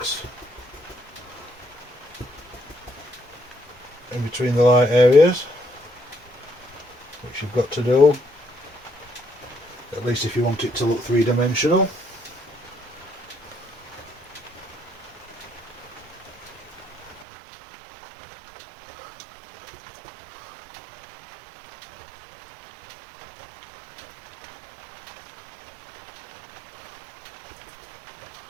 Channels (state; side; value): drops out; left; at 17.2 s